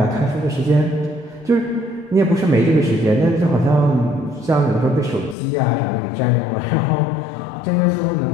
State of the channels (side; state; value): right; drops out; at 5.4 s